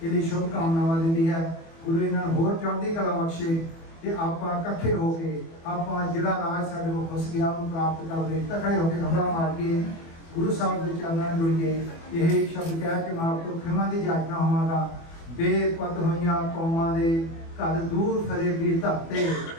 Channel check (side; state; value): right; late; 24 ms